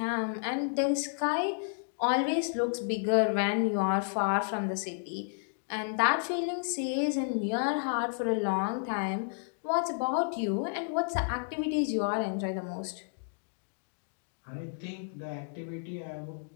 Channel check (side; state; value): right; silent; digital silence